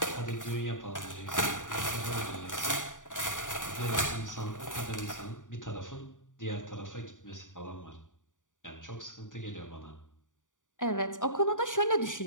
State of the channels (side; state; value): right; late; 0.87 ms